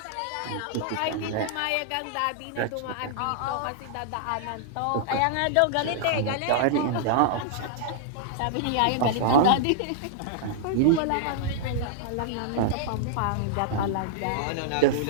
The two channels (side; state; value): both; different; correlation -0.01